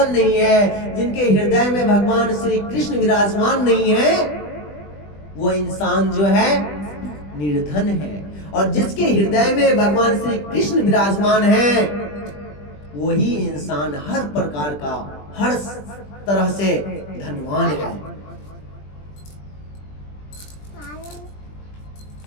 नहीं है, जिनके हृदय में भगवान श्री कृष्ण विराजमान नहीं है, वो इंसान जो है निर्धन है। और जिसके हृदय में भगवान श्री कृष्ण विराजमान है, वही इंसान हर प्रकार का, हर तरह से धनवान है।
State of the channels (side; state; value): right; late; 20 ms